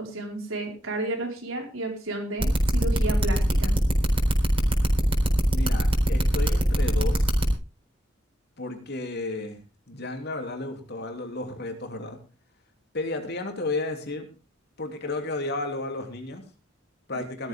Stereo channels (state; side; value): normal; both; correlation 0.77